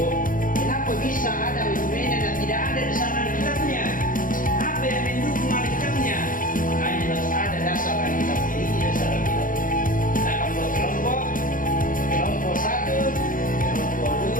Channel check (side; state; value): right; late; 0.39 ms